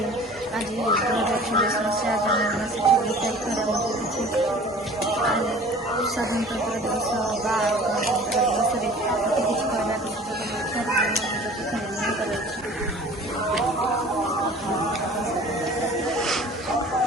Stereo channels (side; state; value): both; normal; correlation 0.46